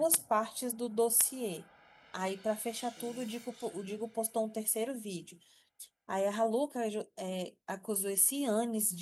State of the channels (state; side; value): identical; both; correlation 1.00